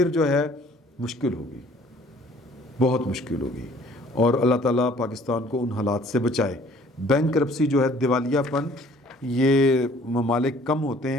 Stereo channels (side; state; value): both; normal; correlation 0.55